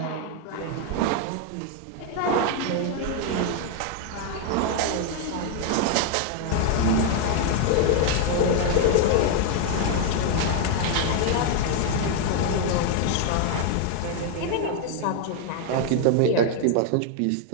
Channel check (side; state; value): both; different; correlation 0.00